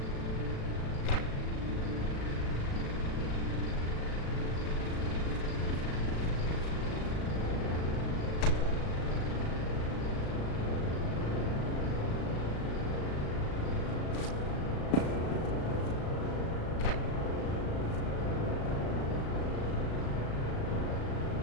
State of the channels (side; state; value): right; late; 36 ms